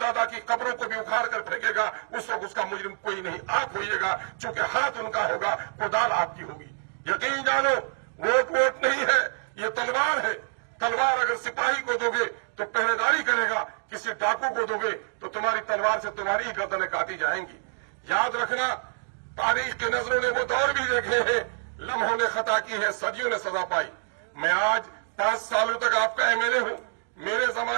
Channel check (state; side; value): silent; left; digital silence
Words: की कब्रों को भी उखाड़ कर फेंकेगा। उस वक्त उसका मुजरिम कोई नहीं, आप होइएगा, चूंकि हाथ उनका होगा, कुदाल आपकी होगी। यकीन जानो, वोट नहीं है, ये तलवार है। तलवार अगर सिपाही को दोगे तो पहरेदारी करेगा, किसी डाकू को दोगे तो तुम्हारी तलवार से तुम्हारी ही गर्दनें काटी जाएंगी। याद रखना, तारीख के नजरों ने वो दौर भी देखे हैं, लम्हों ने खता की है, सदियों ने सजा पाई। मैं आज 5 सालों तक आपका एमएलए हूं। मेरे